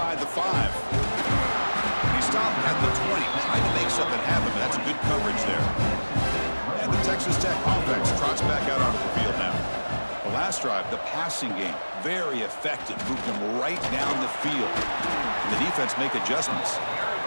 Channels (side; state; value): both; inverted; correlation -1.00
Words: the 5. He stopped at the 20, trying to make something happen, but that's good coverage there. And the Texas Tech offense trots back out onto the field now. The last drive, the passing game, very effective. Moved them right down the field. And the defense make adjustments.